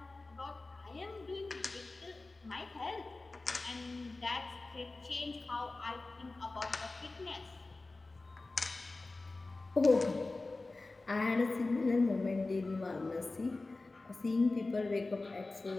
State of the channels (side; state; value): right; quieter; 3.3 dB